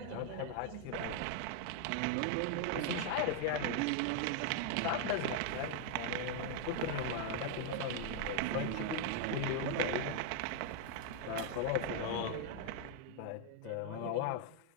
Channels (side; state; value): both; different; correlation 0.00